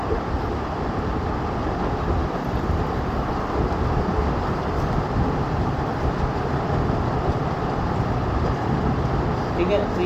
ठीक है, तो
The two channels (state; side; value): identical; both; correlation 1.00